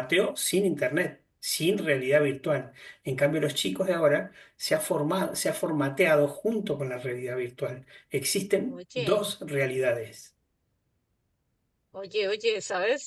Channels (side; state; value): both; identical; correlation 1.00